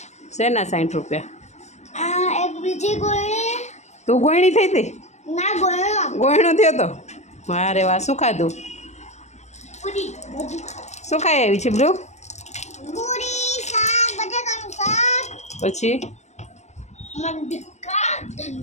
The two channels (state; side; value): late; right; 0.33 ms